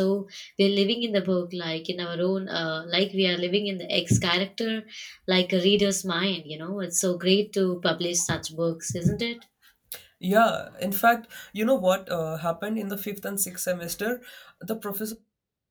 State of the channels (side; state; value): both; identical; correlation 1.00